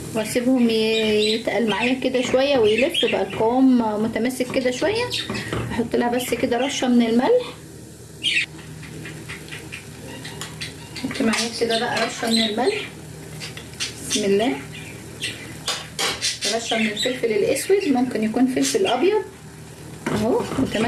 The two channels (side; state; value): both; identical; correlation 1.00